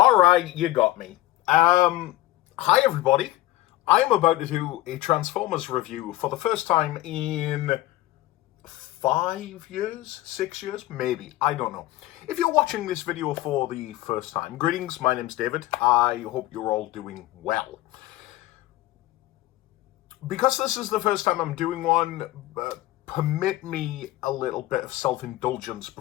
right, you got me. Hi everybody. I am about to do a Transformers review for the first time in 5 years, 6 years, maybe. I don't know. If you're watching this video for the first time, greetings. My name's David. I hope you're all doing well. Because this is the first time I'm doing one, permit me a little bit of self-indulgence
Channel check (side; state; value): right; quieter; 16.7 dB